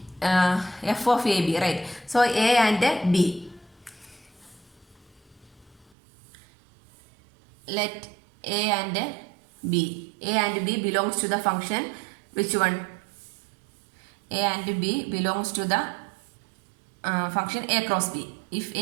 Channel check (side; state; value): left; drops out; at 5.9 s